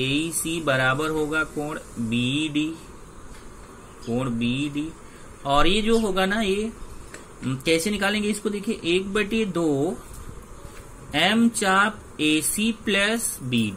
बराबर होगा कोण BD, कोण BD। और ये जो होगा ना, ये कैसे निकालेंगे इसको? देखिए 1/2 M चाप AC प्लस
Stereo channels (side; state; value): both; identical; correlation 1.00